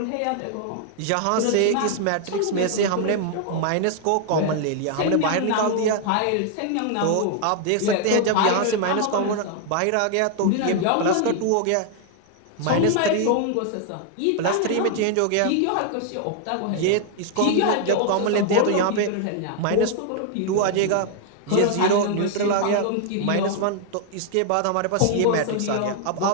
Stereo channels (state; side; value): different; both; correlation 0.00